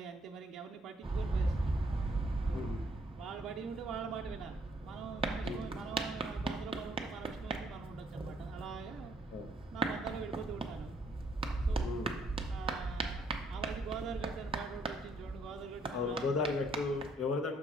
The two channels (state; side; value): normal; both; correlation 0.67